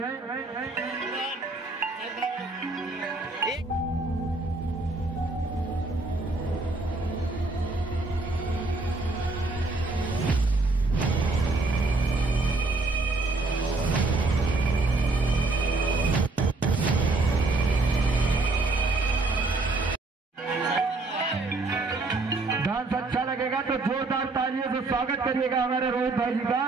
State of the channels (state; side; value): quieter; left; 3.4 dB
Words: डांस अच्छा लगेगा तो जोरदार तालियों से स्वागत करिएगा हमारे रोहित भाई जी का।